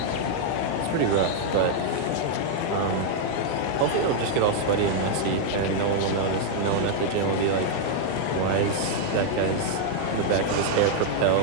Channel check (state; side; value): different; both; correlation -0.01